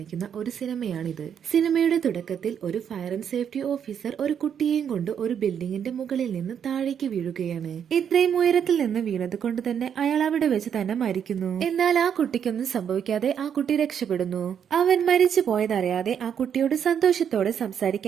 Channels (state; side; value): quieter; left; 8.3 dB